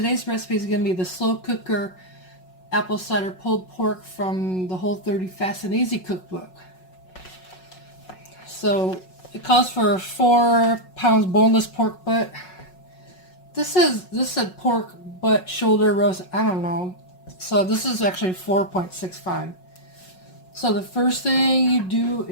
recipe is going to be the slow cooker apple cider pulled pork from the Whole30 Fast and Easy cookbook. So it calls for 4 pounds boneless pork butt. This said pork butt shoulder roast. I don't know. So this is actually 4.65. So the first thing you do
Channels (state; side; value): late; right; 5.4 ms